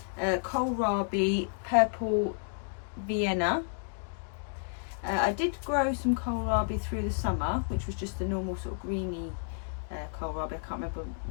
kohlrabi purple Vienna. I did grow some kohlrabi through the summer, which was just the normal sort of greeny kohlrabi. I can't remember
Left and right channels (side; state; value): right; silent; digital silence